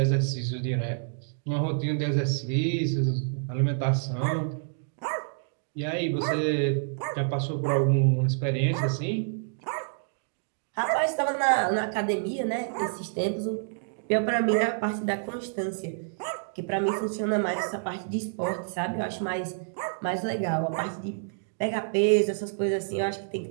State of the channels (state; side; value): silent; left; digital silence